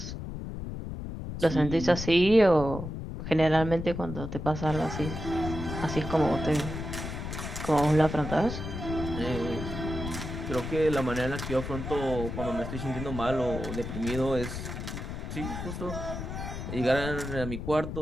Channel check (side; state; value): left; noise; rumble, 6 dB below the sound